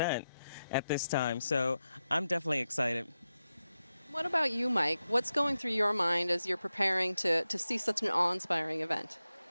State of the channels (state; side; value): inverted; both; correlation -0.91